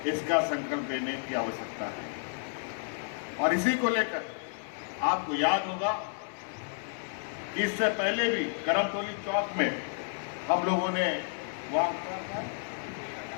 इसका संकल्प लेने की आवश्यकता है। और इसी को लेकर आपको याद होगा कि इससे पहले भी करमतौली चौक में हम लोगों ने वहां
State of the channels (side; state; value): right; silent; digital silence